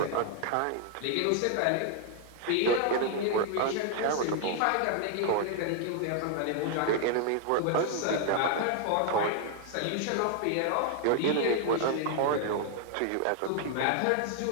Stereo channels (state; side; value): different; both; correlation 0.00